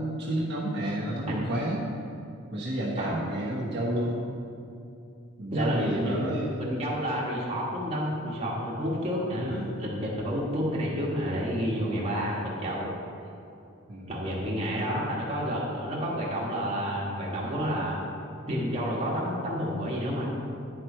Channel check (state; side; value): normal; both; correlation 0.48